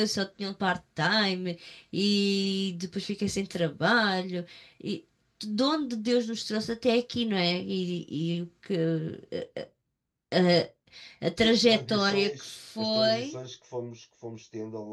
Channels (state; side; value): identical; both; correlation 1.00